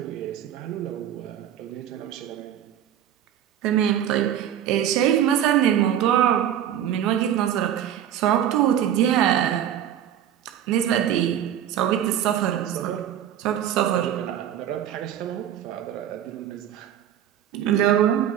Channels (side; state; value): left; quieter; 10.4 dB